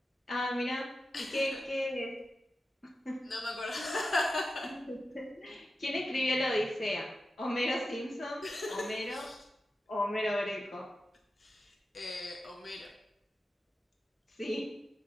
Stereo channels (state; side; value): normal; both; correlation 0.91